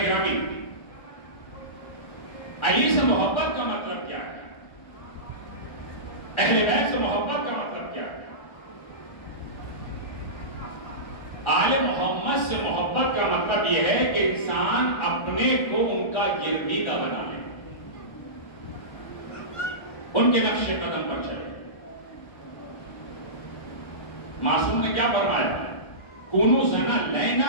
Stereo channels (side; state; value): right; late; 1.3 ms